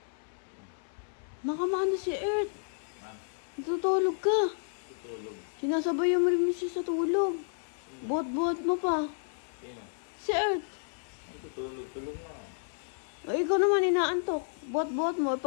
Nakamana si Earth. Ha? Natutulog ka. Tutulog. Sinasabayan mo rin siya sa tulog. Buhat-buhat mo pa. Sino? Si Earth. Ang tutulog. Tulog na. Ay, ikaw naman inaantok. Buhat-buhat mo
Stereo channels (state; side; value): silent; right; 57 dB below the other